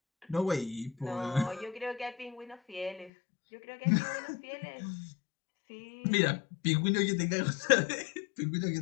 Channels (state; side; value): drops out; right; at 3.1 s